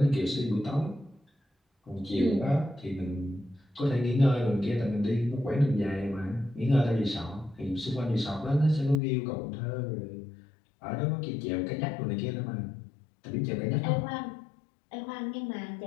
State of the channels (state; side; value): drops out; right; at 9.0 s